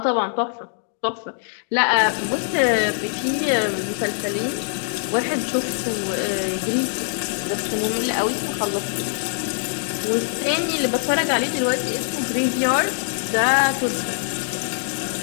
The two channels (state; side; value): silent; right; digital silence